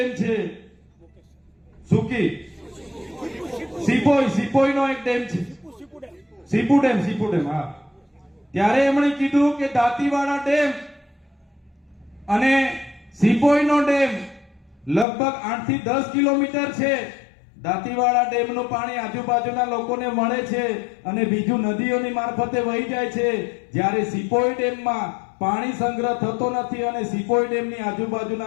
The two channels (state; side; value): drops out; right; at 15.1 s